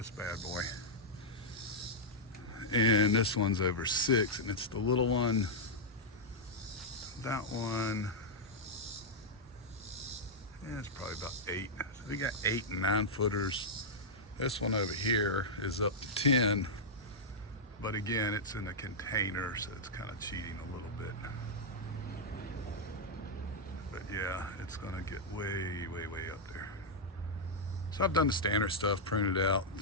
bad boy. And this one's over 6, and it's the little one. That one, yeah, it's probably about 8. So we got 8 and 9 footers. This one over here is up to 10, but again, it's in a container, so it's kind of cheating a little bit. But yeah, it's gonna get way, way, way up there. So I've done the standard stuff, pruned it out,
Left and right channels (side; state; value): both; normal; correlation -0.06